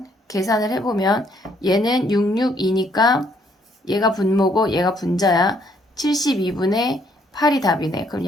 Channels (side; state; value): both; normal; correlation 0.68